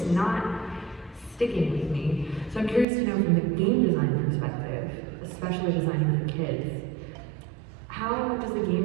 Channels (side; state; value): left; drops out; at 2.9 s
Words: not sticking with me. So I'm curious to know from the game design perspective, especially designing for kids, how does the